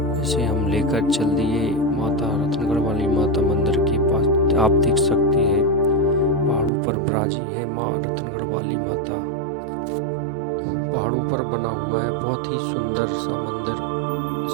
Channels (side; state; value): left; drops out; at 6.7 s